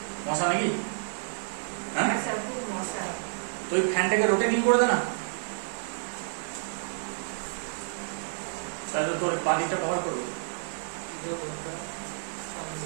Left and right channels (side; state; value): left; silent; digital silence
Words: মশা নাকি? হ্যাঁ স্যার, খুব মশা। তো ওই ফ্যানটাকে রোটেটিং করে দে না, তাহলে তোর বাদিকটা কভার করবে।